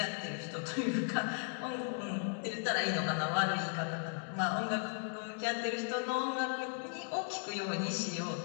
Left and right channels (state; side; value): silent; right; 53 dB below the other